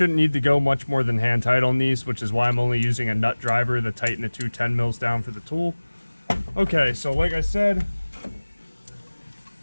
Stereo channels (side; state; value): both; inverted; correlation -1.00